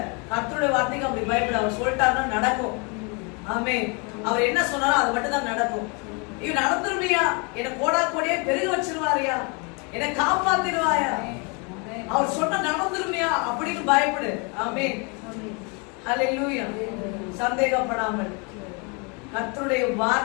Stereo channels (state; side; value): quieter; right; 32.7 dB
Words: கர்த்தருடைய வார்த்தைக்கு அப்படி பயப்பட. அவர் சொல்லிட்டாருன்னா நடக்கும். ஆமென். அவர் என்ன சொன்னாரோ அது மட்டும் தான் நடக்கும். இவன் நடந்துருவியா, என்ன கோடா கோடியே பெருக வச்சிருவாரியா, என்னை காப்பாத்திடுவாயா, அவர் சொன்ன நடந்துருவியா அப்படின்னு பயப்படு. ஆமென். ஹல்லேலூயா. சந்தேகப்படாமல் கர்த்தருடைய